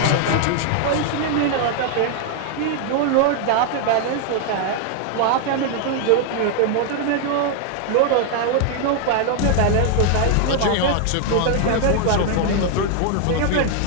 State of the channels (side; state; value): both; different; correlation 0.00